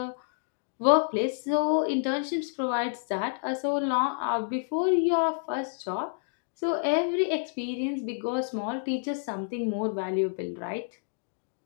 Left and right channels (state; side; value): silent; right; digital silence